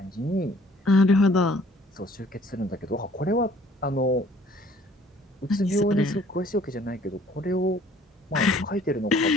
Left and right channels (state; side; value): normal; both; correlation 0.56